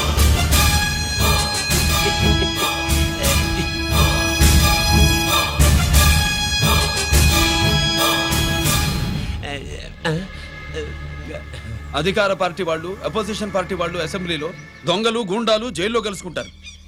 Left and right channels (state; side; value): identical; both; correlation 1.00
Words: అధికార పార్టీ వాళ్ళు, అపోజిషన్ పార్టీ వాళ్ళు అసెంబ్లీలో, దొంగలు గూండాలు జైల్లో కలుసుకుంటారు.